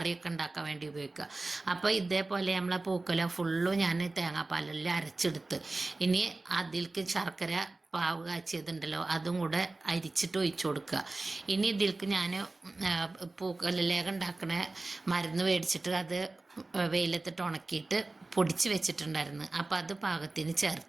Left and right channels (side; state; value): left; quieter; 3.2 dB